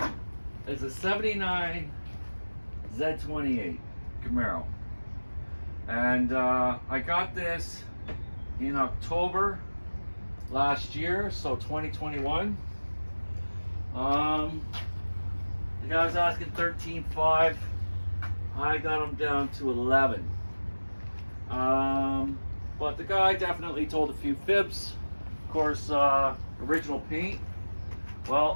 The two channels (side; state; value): both; inverted; correlation -1.00